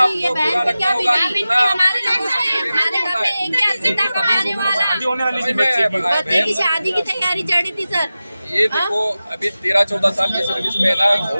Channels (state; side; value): inverted; both; correlation -0.95